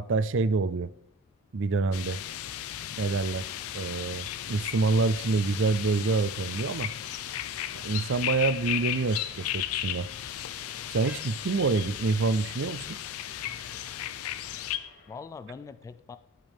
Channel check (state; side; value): normal; both; correlation 0.36